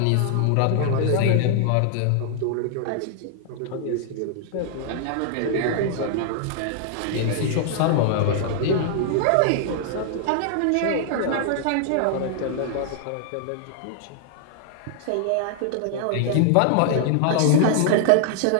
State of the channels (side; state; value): both; different; correlation -0.01